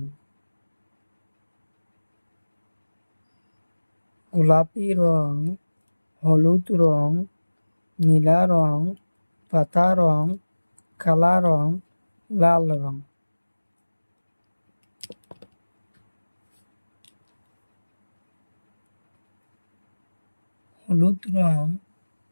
গোলাপি রং, হলুদ রং, নীলা রং, পাতা রং, কালা রং, লাল রং। হলুদ রং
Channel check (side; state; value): both; inverted; correlation -1.00